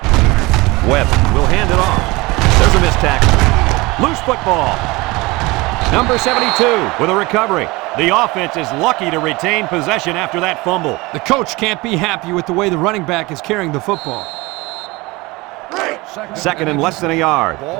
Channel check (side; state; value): left; quieter; 22.9 dB